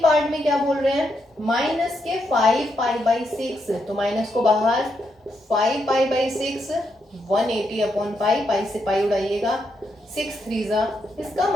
पार्ट में क्या बोल रहे हैं, माइनस के 5 पाई बाई 6, तो माइनस को बाहर, 5 पाई बाई 6 180 अपॉन पाई, पाई से पाई उड़ाइएगा, 6 3 जा, इसका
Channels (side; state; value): both; normal; correlation 0.80